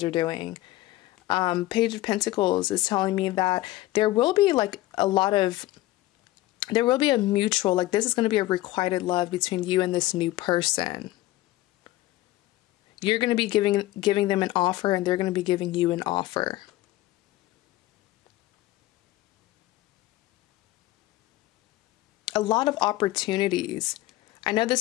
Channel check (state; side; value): quieter; right; 17.0 dB